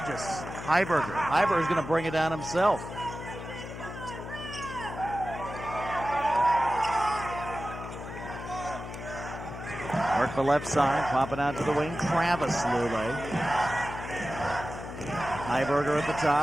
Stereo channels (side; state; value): left; noise; hum, 10 dB below the sound